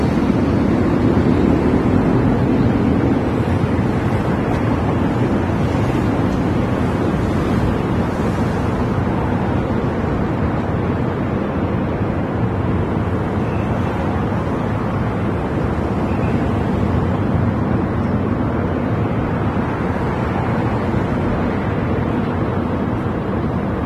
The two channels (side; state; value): both; identical; correlation 1.00